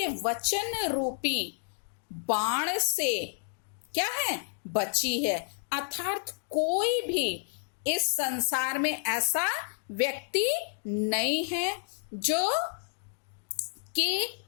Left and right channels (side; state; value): right; silent; digital silence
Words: वचन रूपी बाण से क्या है, बची है। अर्थात कोई भी इस संसार में ऐसा व्यक्ति नहीं है जो कि